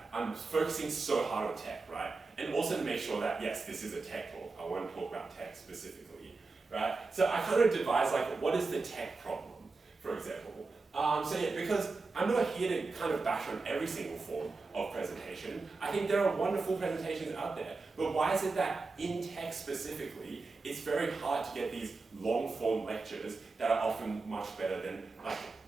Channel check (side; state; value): left; quieter; 3.9 dB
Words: I'm focusing so hard on tech, right? And also to make sure that, yes, this is a tech talk. I want to talk about tech specifically, right? So I kind of devised what is the tech problem, for example. Because I'm not here to kind of bash on every single form of presentation. I think there are wonderful presentations out there, but why is it that in tech specifically, it's very hard to get these long form lectures that are often much better than,